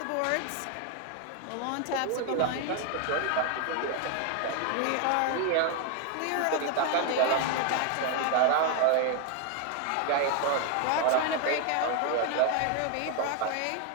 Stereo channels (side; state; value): both; different; correlation 0.01